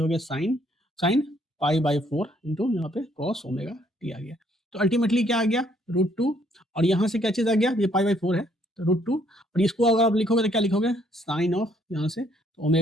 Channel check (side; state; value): both; normal; correlation 0.67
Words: गया साइन साइन π/4 इंटू यहाँ पे कॉस ओमेगा टी आ गया। तो अल्टीमेटली क्या आ गया, √2, और यहाँ से क्या चीज आ गया, ये π/4 है तो √2, और इसको अगर आप लिखोगे तो क्या लिखोगे, साइन ऑफ यहाँ से तो